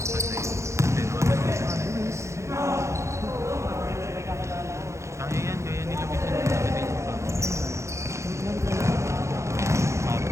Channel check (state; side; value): late; left; 0.14 ms